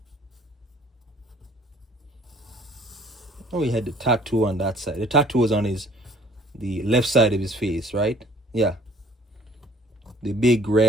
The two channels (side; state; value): both; normal; correlation 0.55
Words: Oh, he had the tattoo on that side. The tattoo was on the left side of his face, right? Yeah. The big